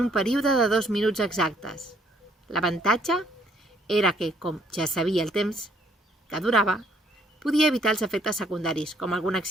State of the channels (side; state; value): both; normal; correlation 0.66